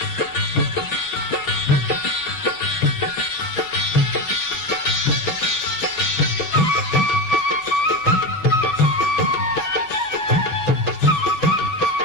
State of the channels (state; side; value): late; right; 6.1 ms